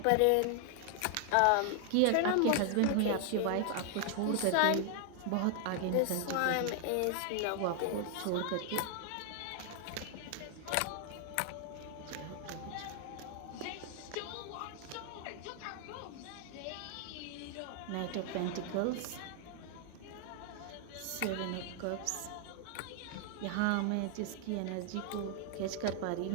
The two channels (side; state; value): both; different; correlation 0.00